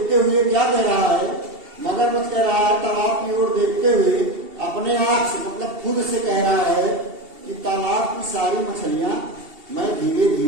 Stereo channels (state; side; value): late; left; 2.7 ms